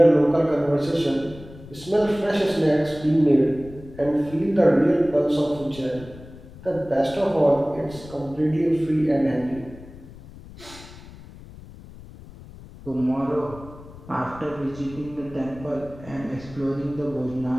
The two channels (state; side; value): noise; left; rumble, 18 dB below the sound